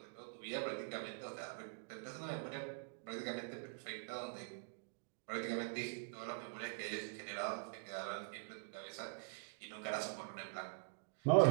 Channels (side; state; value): left; silent; digital silence